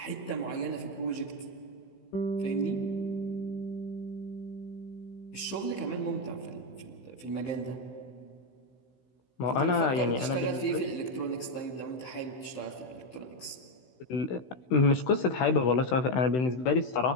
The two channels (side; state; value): right; late; 16 ms